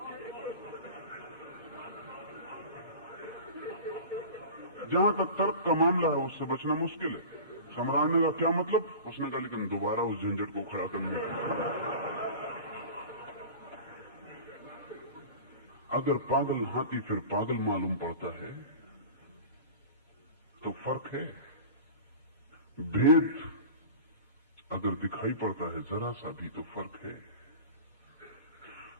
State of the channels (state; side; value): inverted; both; correlation -0.36